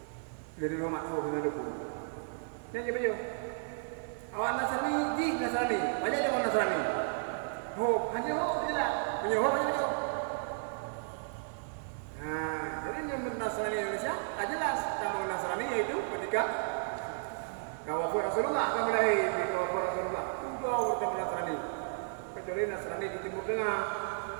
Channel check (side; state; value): left; silent; digital silence